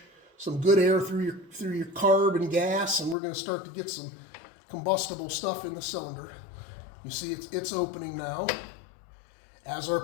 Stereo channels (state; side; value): drops out; right; at 3.2 s